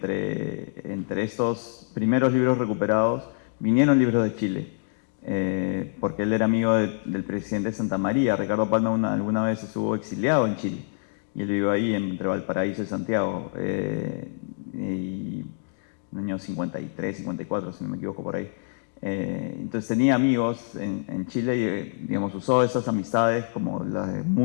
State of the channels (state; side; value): silent; right; digital silence